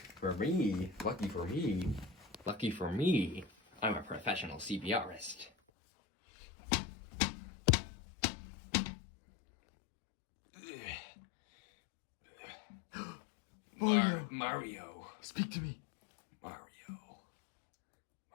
lucky for me, I'm a professional CPRist. Mario. Speak to me. Mario.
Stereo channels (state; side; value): drops out; right; at 5.5 s